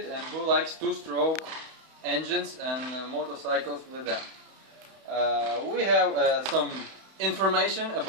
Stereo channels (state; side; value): late; left; 31 ms